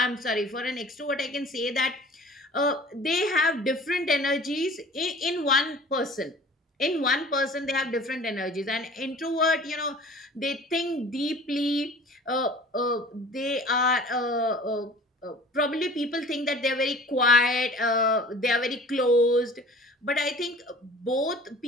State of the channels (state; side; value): normal; both; correlation 0.46